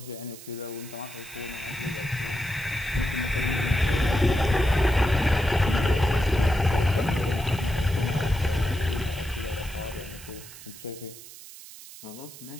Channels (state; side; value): noise; right; hiss, 16 dB below the sound